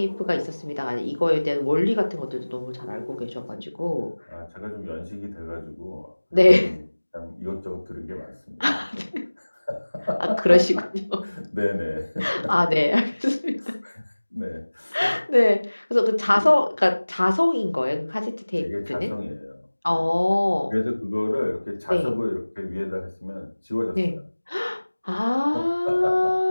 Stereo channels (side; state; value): both; inverted; correlation -1.00